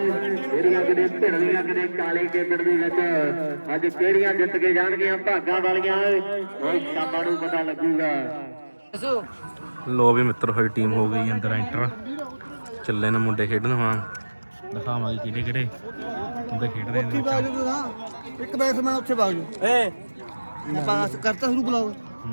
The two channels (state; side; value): inverted; both; correlation -1.00